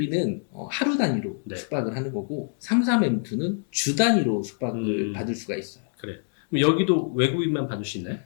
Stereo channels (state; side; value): silent; right; 61 dB below the other